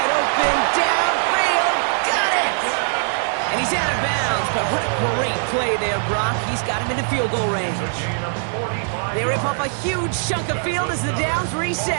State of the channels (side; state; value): left; silent; digital silence